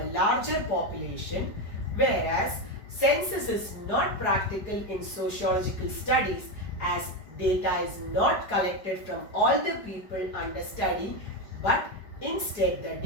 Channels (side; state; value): right; late; 5.0 ms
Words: larger population, whereas census is not practical in sociological studies as data is not collected from all the people under study, but instead the